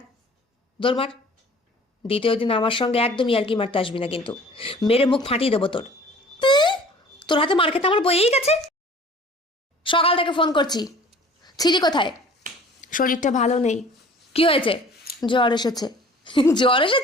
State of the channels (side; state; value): both; normal; correlation 0.48